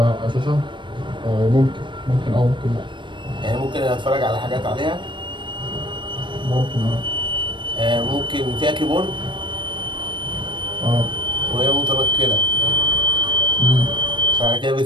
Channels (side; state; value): left; late; 0.23 ms